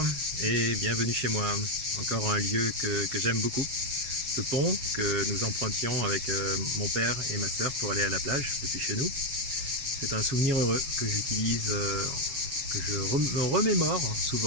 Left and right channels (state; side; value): late; left; 7.3 ms